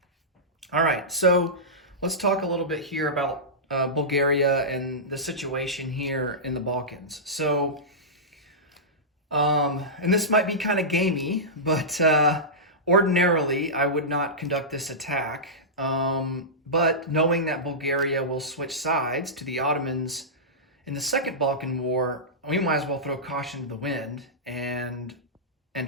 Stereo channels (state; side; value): normal; both; correlation -0.15